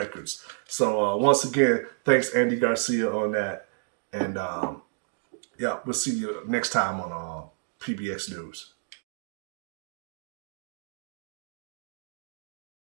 So once again, thanks Andy Garcia on that. And yeah, we'll see you next time on PBX News.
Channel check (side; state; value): left; silent; digital silence